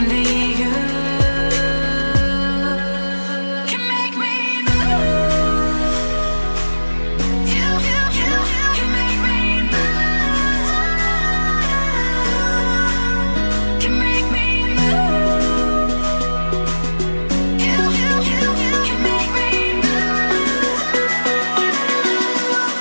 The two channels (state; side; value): inverted; both; correlation -1.00